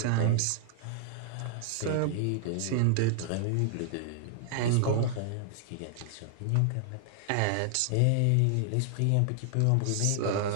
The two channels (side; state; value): both; different; correlation 0.00